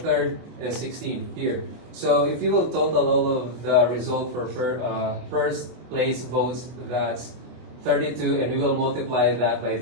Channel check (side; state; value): left; late; 24 ms